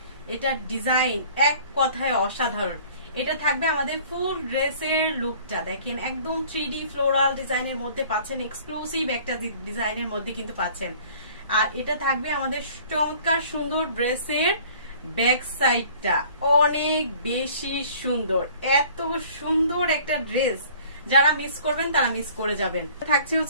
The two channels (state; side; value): inverted; both; correlation -0.51